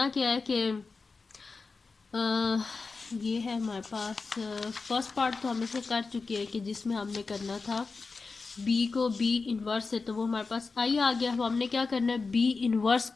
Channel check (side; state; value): right; quieter; 4.3 dB